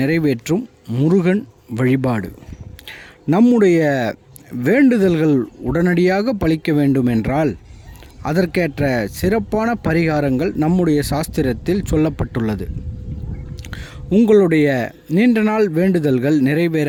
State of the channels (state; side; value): identical; both; correlation 1.00